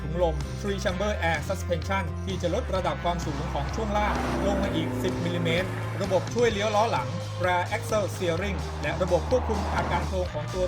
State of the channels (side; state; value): both; identical; correlation 1.00